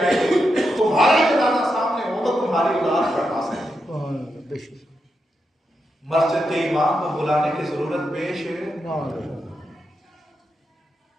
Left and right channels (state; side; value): normal; both; correlation 0.85